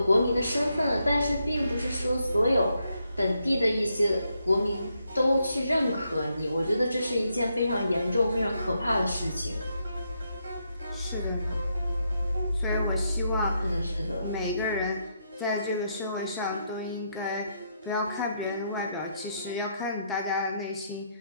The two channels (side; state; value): both; inverted; correlation -0.78